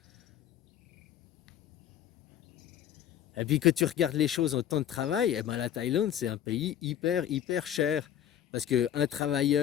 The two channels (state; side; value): quieter; right; 10.5 dB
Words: Et puis que tu regardes les choses en temps de travail, eh ben la Thaïlande, c'est un pays hyper, hyper cher. Parce qu'un